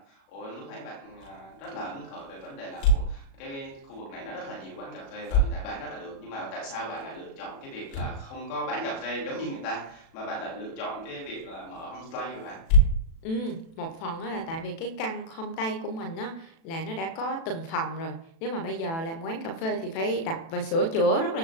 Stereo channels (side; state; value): right; late; 36 ms